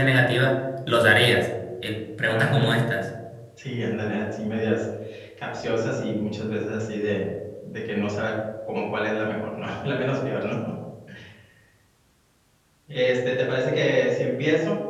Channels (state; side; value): identical; both; correlation 1.00